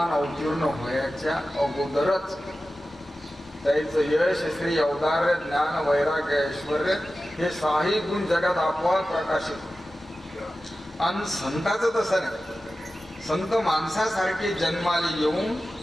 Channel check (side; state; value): both; normal; correlation 0.94